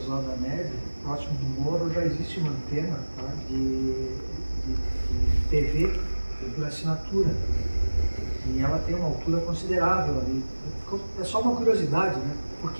Neve, próximo do Moro, já existe uma antena, tá, de TV por assinatura. E ela tem uma altura considerável ali. É só uma curiosidade, né? Por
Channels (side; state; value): both; inverted; correlation -1.00